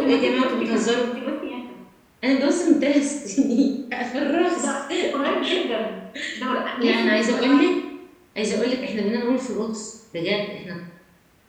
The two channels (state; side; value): identical; both; correlation 1.00